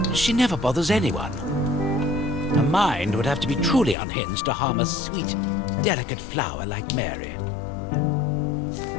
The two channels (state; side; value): drops out; right; at 4.0 s